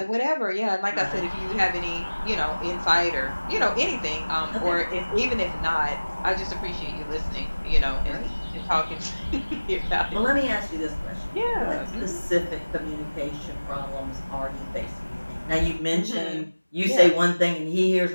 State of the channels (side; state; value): both; inverted; correlation -1.00